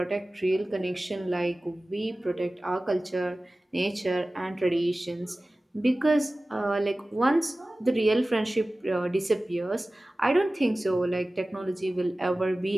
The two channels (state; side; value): normal; both; correlation 0.97